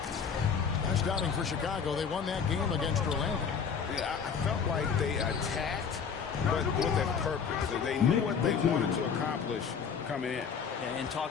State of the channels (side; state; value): right; quieter; 6.5 dB